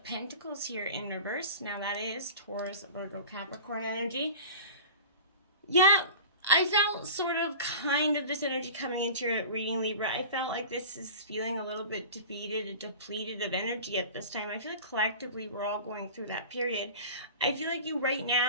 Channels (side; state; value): both; inverted; correlation -0.37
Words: Pentacles here in reverse. Now that is Taurus, Virgo, Capricorn energy. Yeah, I felt sort of kind of this energy coming into your reading, Libra. I felt like this is feeling a little bit defeated and depleted of energy at this time. I feel like collectively we're all going through that period. I feel like you right